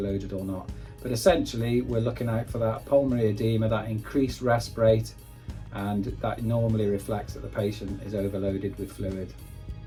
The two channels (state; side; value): identical; both; correlation 1.00